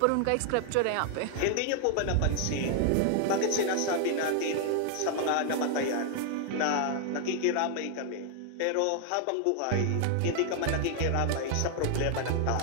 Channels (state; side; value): different; both; correlation 0.00